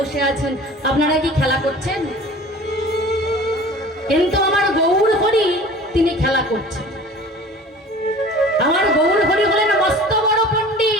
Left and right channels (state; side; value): normal; both; correlation 0.43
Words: আছেন, আপনারা কি খেলা করছেন? কিন্তু আমার গৌর হরি তিনি খেলা করছেন। আমার গৌর হরি হলেন মস্ত বড়